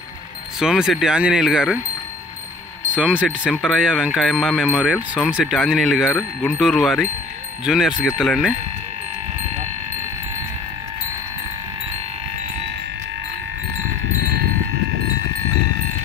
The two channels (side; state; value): right; quieter; 3.6 dB